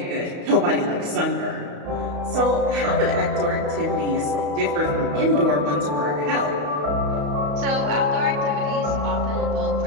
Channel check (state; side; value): late; left; 34 ms